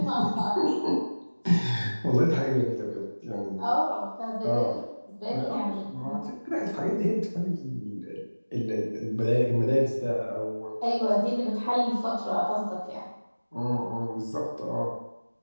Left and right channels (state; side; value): inverted; both; correlation -1.00